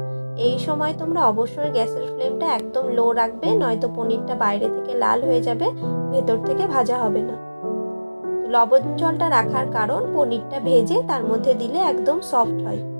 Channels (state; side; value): inverted; both; correlation -1.00